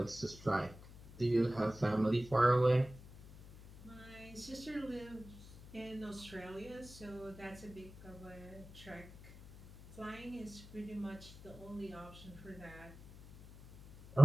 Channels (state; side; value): noise; left; hum, 18 dB below the sound